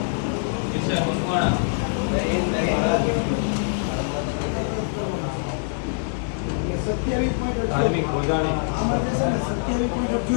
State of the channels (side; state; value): right; silent; digital silence